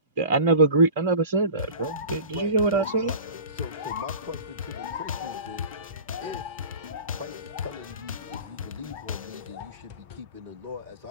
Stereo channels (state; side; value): inverted; both; correlation -0.38